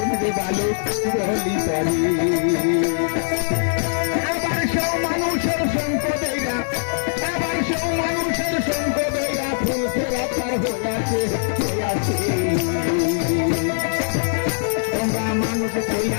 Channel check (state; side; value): silent; right; digital silence